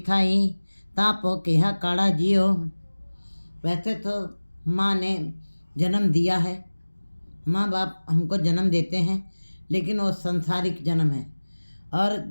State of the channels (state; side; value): inverted; both; correlation -1.00